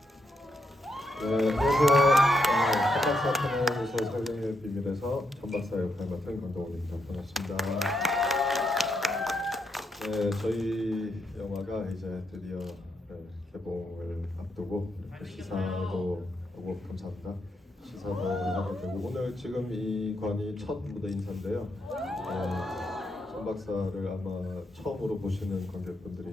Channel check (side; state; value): both; normal; correlation 0.80